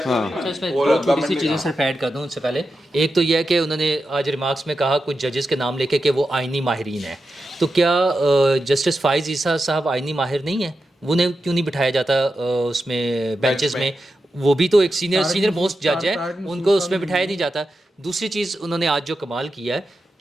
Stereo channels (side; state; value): both; normal; correlation 0.89